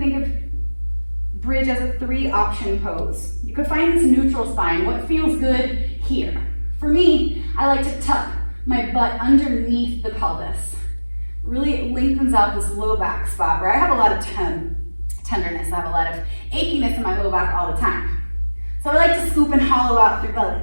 of bridge as a 3-option pose. You could find this neutral spine, what feels good here. For me, I like to tuck my butt underneath the pelvis. Really it lengthens out this low back spot where I have a lot of tenderness. I have a lot of achiness in my low back all the time. So I like to scoop and hollow out through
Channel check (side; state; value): both; inverted; correlation -1.00